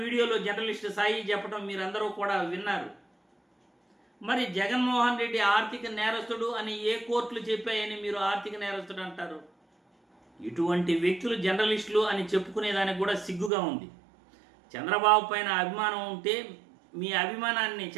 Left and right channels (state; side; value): drops out; left; at 13.5 s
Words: జర్నలిస్ట్ సాయి చెప్పడం మీరందరూ కూడా విన్నారు. మరి జగన్మోహన్ రెడ్డి ఆర్థిక నేరస్తుడు అని ఏ కోర్టులు చెప్పాయని మీరు ఆర్థిక నేరస్తుడు అంటారు? ఇటువంటి వ్యక్తులు జర్నలిస్టులు అని చెప్పుకునేదానికి కూడా సిగ్గుగా ఉంది. చంద్రబాబు పైన అభిమానం ఉంటే మీ అభిమానాన్ని